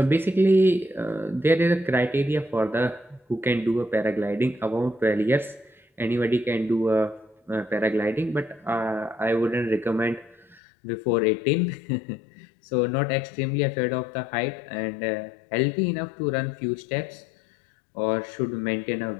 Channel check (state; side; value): drops out; right; at 10.6 s